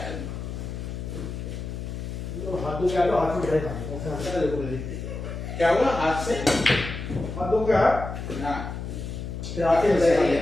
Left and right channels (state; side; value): noise; left; hum, 7 dB below the sound